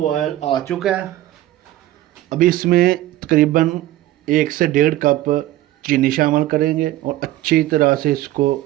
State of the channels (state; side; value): quieter; left; 15.1 dB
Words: आ चुका है। अभी इसमें तकरीबन 1 से 1.5 कप चीनी शामिल करेंगे और अच्छी तरह से इसको